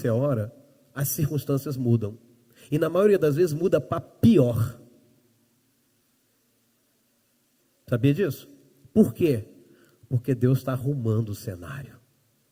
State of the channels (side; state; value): both; identical; correlation 1.00